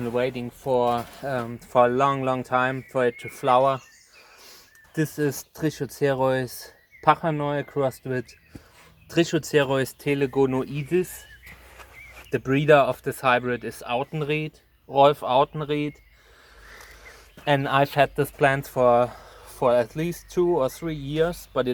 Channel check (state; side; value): identical; both; correlation 1.00